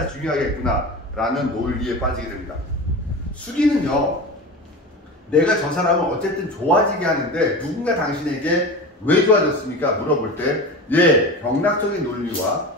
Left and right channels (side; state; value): both; normal; correlation 0.29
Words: 중요하겠구나 라는 논리에 빠지게 됩니다. 수기는요, 내가 저 사람을 어쨌든 좋아지게 하는데 누군가 당신에게 왜 좋아졌습니까? 물어볼 때 경락적인 논리와